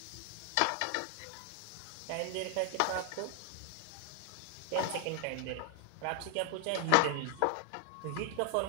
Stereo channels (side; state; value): both; different; correlation 0.00